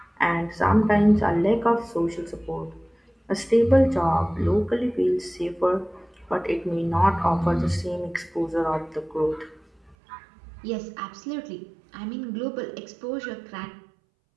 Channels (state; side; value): drops out; left; at 10.0 s